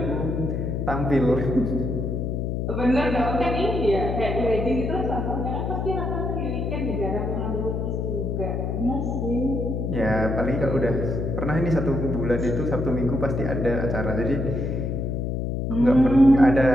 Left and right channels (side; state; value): left; noise; hum, 1 dB below the sound